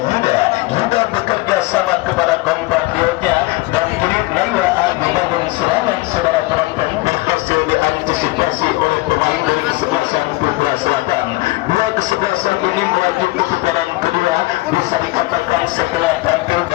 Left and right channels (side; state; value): right; quieter; 21.5 dB